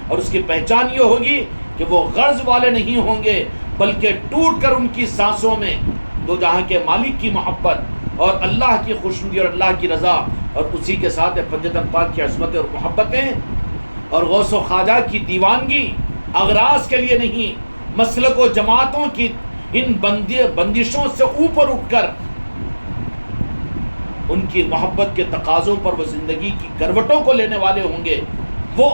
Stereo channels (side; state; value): both; inverted; correlation -1.00